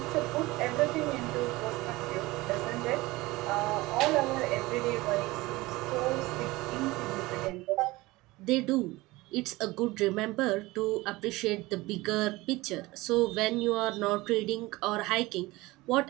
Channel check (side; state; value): left; quieter; 20.6 dB